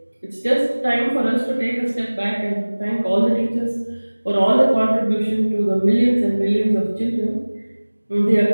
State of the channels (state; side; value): inverted; both; correlation -1.00